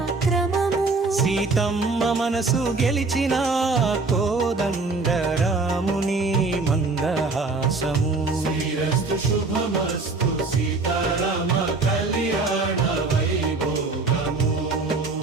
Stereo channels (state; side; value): quieter; left; 3.7 dB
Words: సీతమ్మ మనసు గెలిచిన కోదండ రాముని మందహాసము శ్రీరస్తు శుభమస్తు సీతారామ కళ్యాణ వైభోగము.